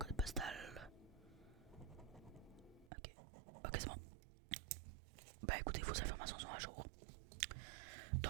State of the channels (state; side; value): drops out; left; at 2.9 s